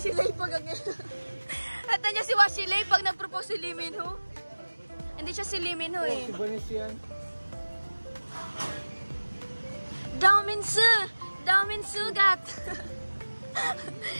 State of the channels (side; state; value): both; inverted; correlation -1.00